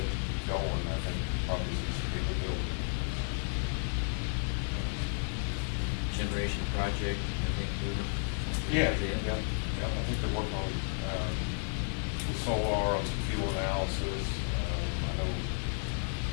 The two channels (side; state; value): right; silent; 56 dB below the other